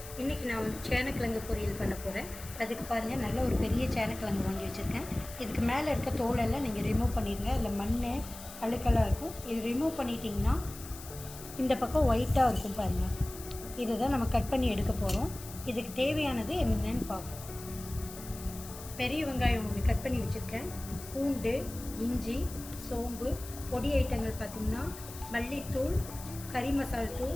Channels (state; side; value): noise; left; hiss, 14 dB below the sound